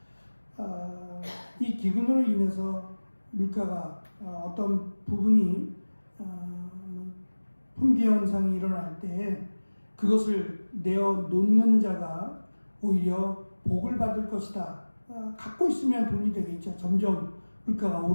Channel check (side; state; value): both; inverted; correlation -1.00